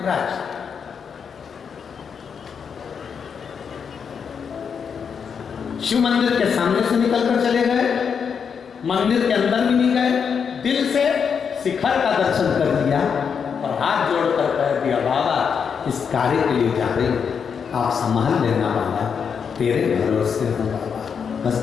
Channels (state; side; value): quieter; right; 6.7 dB